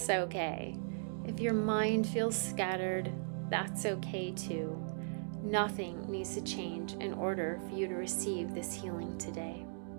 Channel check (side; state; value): left; silent; digital silence